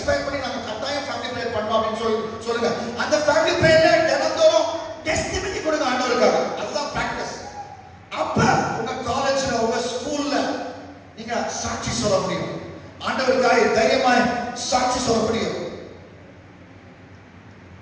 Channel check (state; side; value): identical; both; correlation 1.00